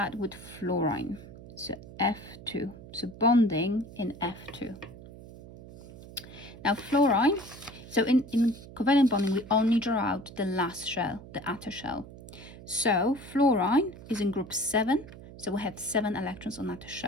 with fluorine. So F2, so bonding in F2. Now fluorine, so in covalent bonding, we only draw out the last shell, the outer shell. So fluorine is in group 7, so we have 7 electrons on outer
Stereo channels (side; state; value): right; noise; hum, 16 dB below the sound